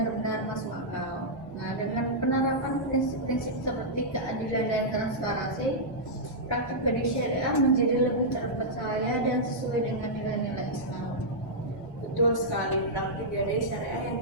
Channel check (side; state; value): both; normal; correlation -0.09